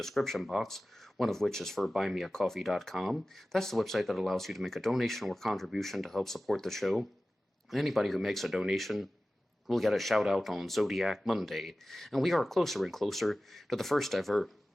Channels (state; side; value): normal; both; correlation 0.96